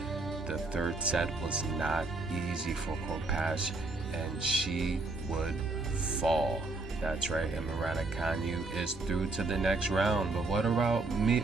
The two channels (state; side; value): quieter; left; 3.3 dB